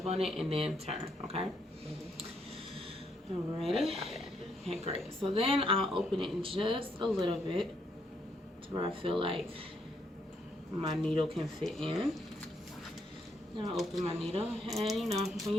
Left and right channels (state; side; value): normal; both; correlation 0.74